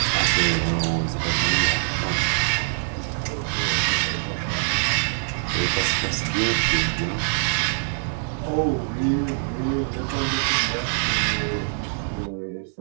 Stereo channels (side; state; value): left; silent; digital silence